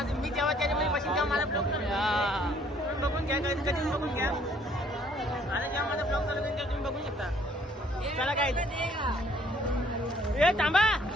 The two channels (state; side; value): normal; both; correlation 0.62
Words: जेव्हा त्याच्यामध्ये बसीन तेव्हा माझा ब्लॉग तुम्ही बघून घ्या. कधी बघून घ्या. आणि जेव्हा माझा ब्लॉग चालू तेव्हा तुम्ही बघू शकता. चला काय, थांबा